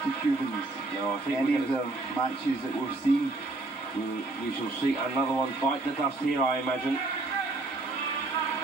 the Cubans. No, I think any of the matches that we've seen. We shall see another one bite the dust here, I imagine.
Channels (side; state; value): left; quieter; 3.1 dB